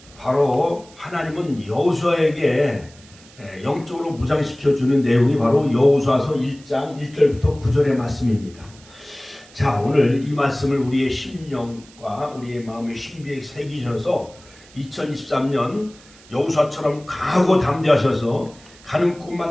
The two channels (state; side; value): noise; right; hiss, 24 dB below the sound